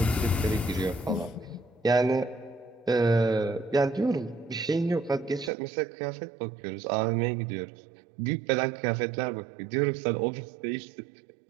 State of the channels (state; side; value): drops out; left; at 5.5 s